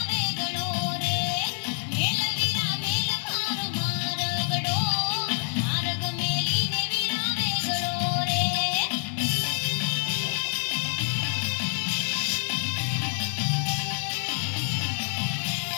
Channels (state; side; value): silent; right; 56 dB below the other